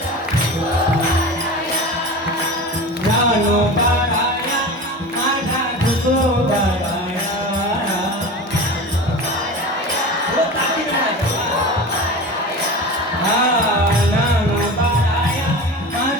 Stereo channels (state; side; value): normal; both; correlation 0.31